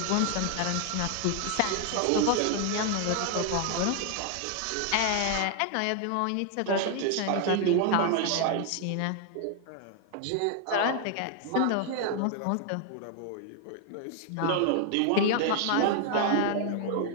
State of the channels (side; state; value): both; different; correlation 0.00